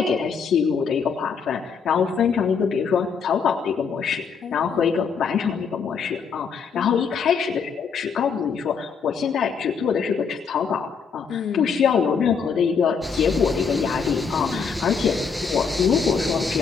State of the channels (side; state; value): right; quieter; 5.9 dB